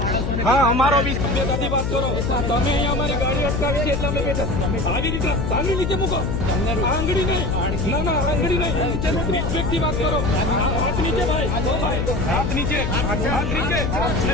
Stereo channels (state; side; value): noise; left; hum, 1 dB below the sound